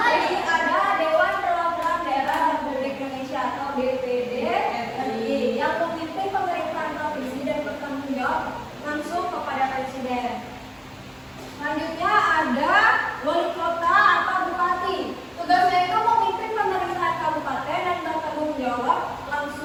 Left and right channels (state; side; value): identical; both; correlation 1.00